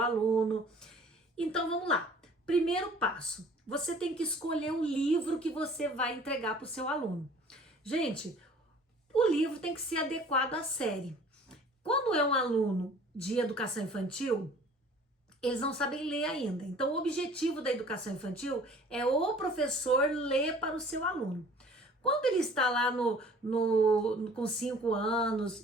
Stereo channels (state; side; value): normal; both; correlation 0.50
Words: Então vamos lá. Primeiro passo, você tem que escolher um livro que você vai entregar para o seu aluno. Gente, o livro tem que ser adequado à série. Quando é um aluno de educação infantil, eles não sabem ler ainda. Então, o objetivo da educação infantil é o professor ler para o seu aluno. Quando ele está lá com 5